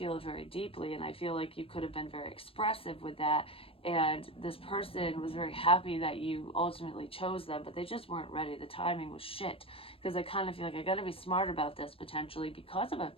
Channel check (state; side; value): late; right; 0.27 ms